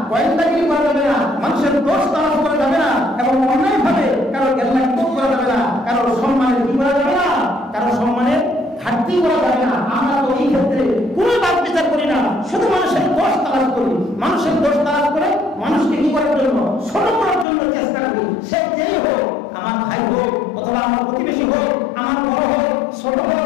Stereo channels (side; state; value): right; drops out; at 17.4 s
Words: গোয়েন্দাগিরি করা যাবে না, মানুষের দোষ তালাশ করা যাবে না, এবং অন্যায়ভাবে কারো গেরলাক্ত করা যাবে না, কারো সম্মানের কি করা যাবে না, কারো সম্মানের ঘাটতি করা যাবে না। আমরা তো এই ক্ষেত্রে কোনো বাদ বিচার করি না, শুধু মানুষের দোষ তালাশ করি, মানুষের দোষ তালাশ করে মানুষকে কি করার জন্য, ছোট করার জন্য চেষ্টা করি। সে যেই হোক, আমার ভাই হোক অথবা আমার প্রতিবেশী হোক, আমার বড় হোক ছোট